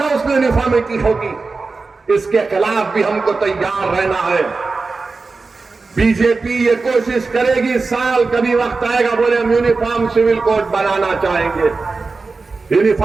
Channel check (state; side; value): quieter; left; 4.0 dB